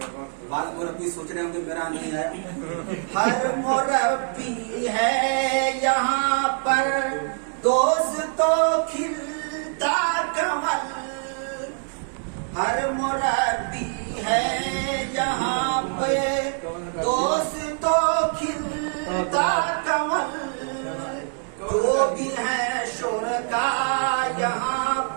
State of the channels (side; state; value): left; silent; 60 dB below the other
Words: بعض مربی سوچ رہے ہوں کہ میرا نہیں ہے، ہر مربی ہے یہاں پر دوستو کھلتا کمل، ہر مربی ہے یہاں پہ دوستو کھلتا کمل، جو بھی ہے شرکا یہاں